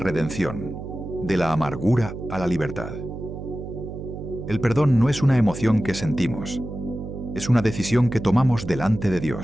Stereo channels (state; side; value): noise; right; hum, 9 dB below the sound